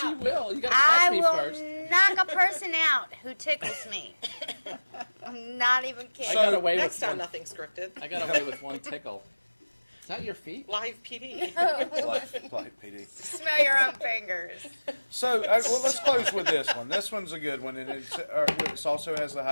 out. you will. You gotta I catch me will first. knock a person out who tickles me. I'm not even I kidding. got away Next with time, one. nothing scripted. I got away with one tickle. Is that your feet? Live PD. Like PD. Smell your own fingers. So, well, let's close with this one. This one's a good one, and it also has the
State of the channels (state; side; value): inverted; both; correlation -1.00